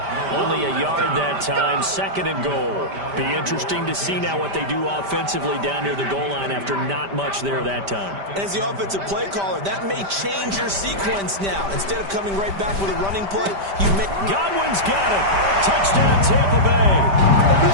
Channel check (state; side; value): late; left; 5.1 ms